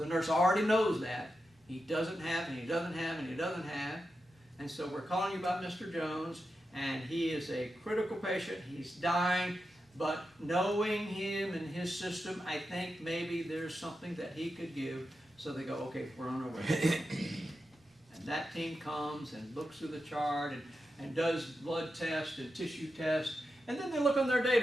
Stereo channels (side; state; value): both; normal; correlation 0.89